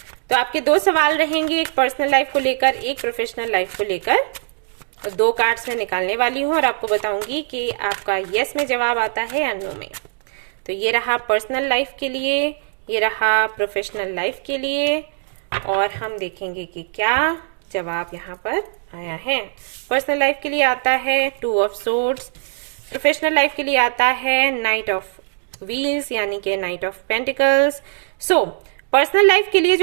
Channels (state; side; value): silent; left; digital silence